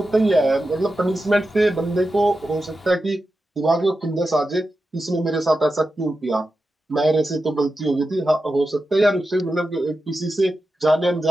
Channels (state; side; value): normal; both; correlation 0.91